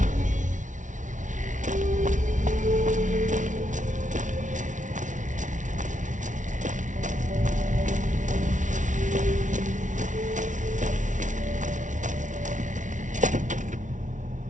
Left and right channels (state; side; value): late; left; 0.37 ms